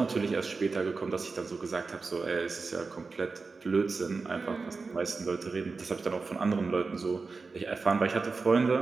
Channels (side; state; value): left; quieter; 4.3 dB